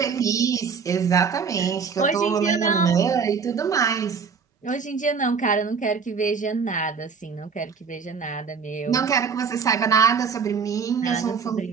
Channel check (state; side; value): quieter; left; 5.8 dB